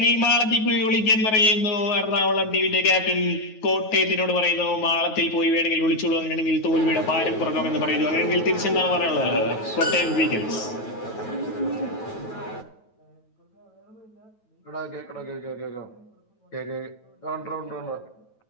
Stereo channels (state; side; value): late; right; 9.3 ms